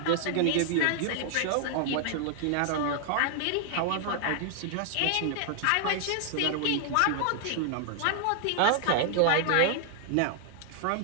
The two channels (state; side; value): different; both; correlation 0.00